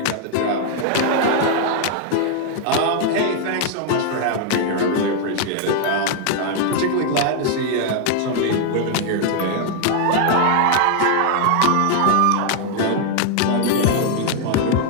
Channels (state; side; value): different; both; correlation 0.00